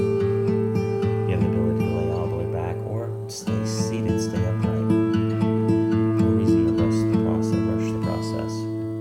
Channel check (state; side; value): identical; both; correlation 1.00